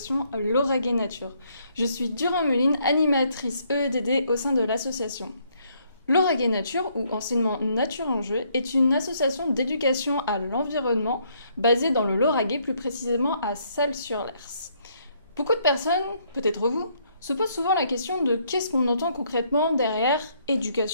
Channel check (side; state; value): both; inverted; correlation -0.70